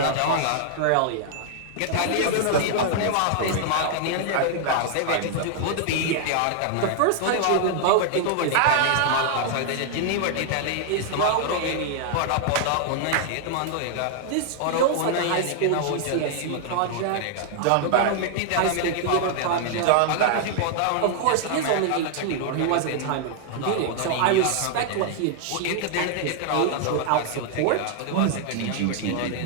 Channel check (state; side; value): different; both; correlation 0.00